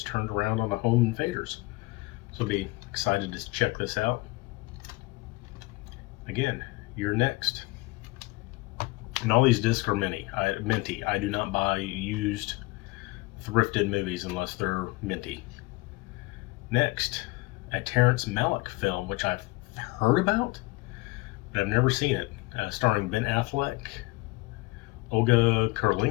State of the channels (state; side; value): quieter; right; 22.7 dB